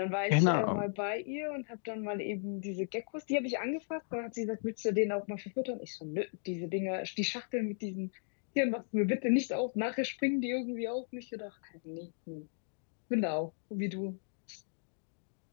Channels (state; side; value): silent; right; digital silence